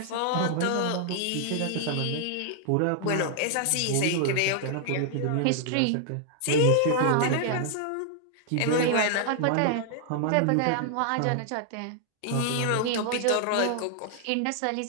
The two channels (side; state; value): both; different; correlation -0.01